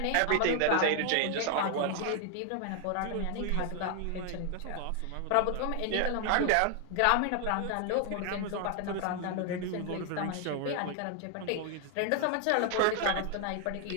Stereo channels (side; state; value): both; different; correlation 0.00